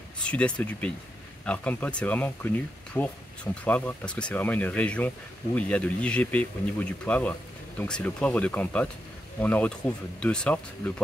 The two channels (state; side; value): normal; both; correlation 0.84